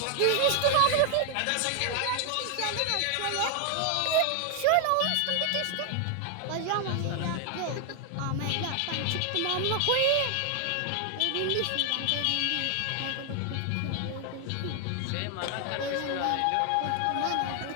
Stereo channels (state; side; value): different; both; correlation 0.00